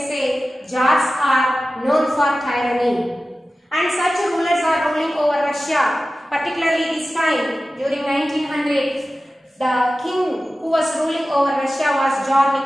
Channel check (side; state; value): both; normal; correlation 0.95